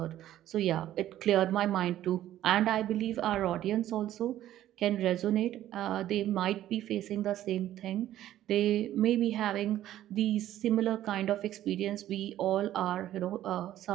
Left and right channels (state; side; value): quieter; left; 12.9 dB